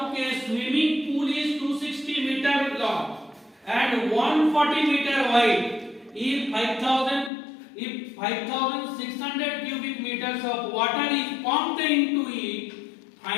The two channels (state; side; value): drops out; right; at 7.3 s